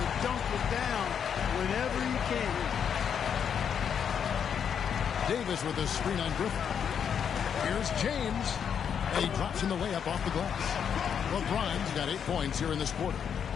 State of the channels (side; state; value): right; quieter; 7.8 dB